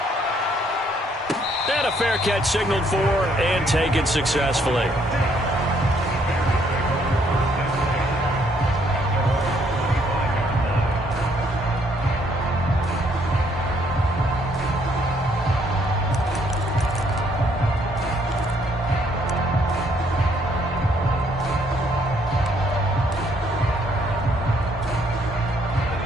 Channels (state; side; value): normal; both; correlation 0.68